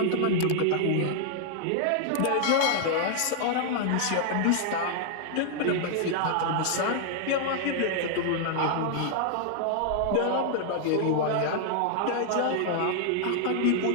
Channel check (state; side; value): different; both; correlation 0.00